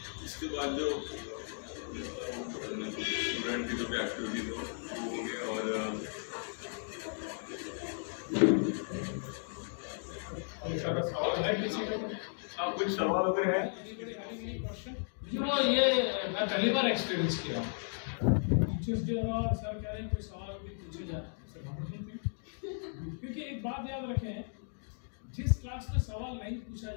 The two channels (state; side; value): silent; right; digital silence